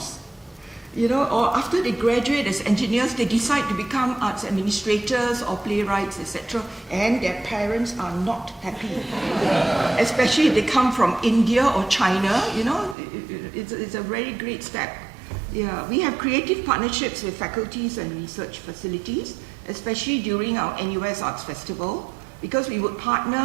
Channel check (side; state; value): left; drops out; at 13.0 s